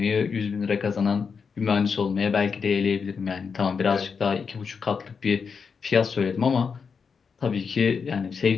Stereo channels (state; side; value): quieter; right; 5.8 dB